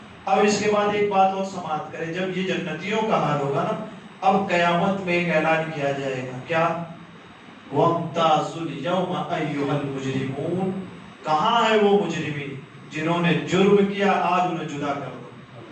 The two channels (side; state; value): both; identical; correlation 1.00